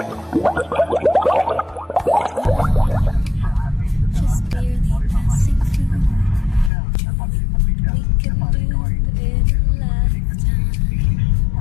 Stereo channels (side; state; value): right; drops out; at 6.7 s